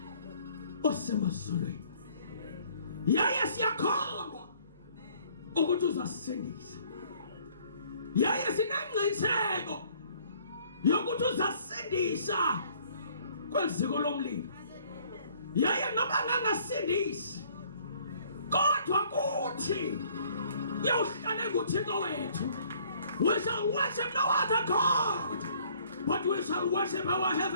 osemazulwini, yaye siyakholwa ukuthi uzasindisa, yaye sinengqiniseko yokuthi uzasindisa kweziko lomlilo, yaye noba ngangasindisi kodwa kuthi yawuhlale kuThixo wethu. We shall worship no other God, but we shall worship our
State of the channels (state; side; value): inverted; both; correlation -0.59